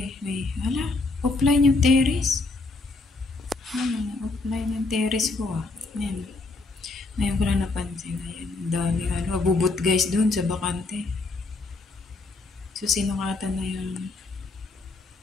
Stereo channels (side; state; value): right; quieter; 3.5 dB